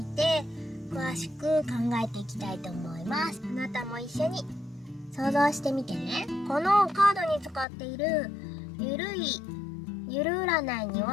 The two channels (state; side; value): drops out; right; at 7.7 s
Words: て詳しく考えていきたいと思います。あなたも一緒に想像してみてね。このカードに使っているゆる占いに